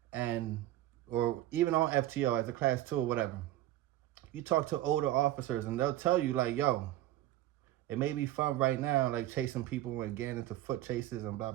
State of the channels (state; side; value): quieter; left; 14.6 dB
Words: and or even on FTO as a class 2 or whatever. You talk to older officers and they'll tell you, like, yo, it may be fun right now, like chasing people and getting into foot chases and blah